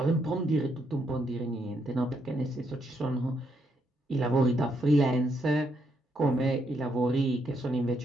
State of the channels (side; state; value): both; normal; correlation 0.76